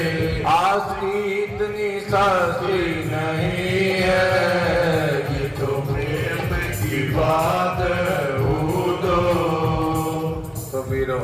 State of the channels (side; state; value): both; identical; correlation 1.00